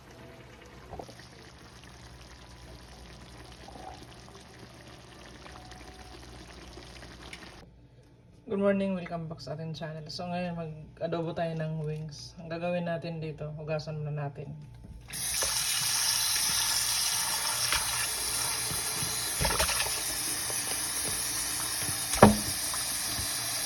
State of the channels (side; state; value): both; identical; correlation 1.00